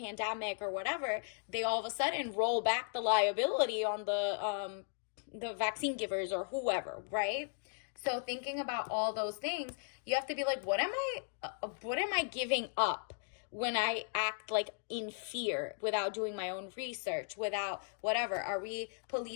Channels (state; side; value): silent; right; digital silence